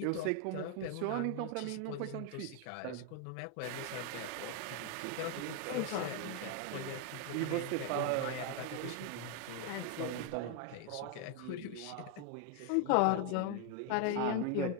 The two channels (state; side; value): different; both; correlation 0.01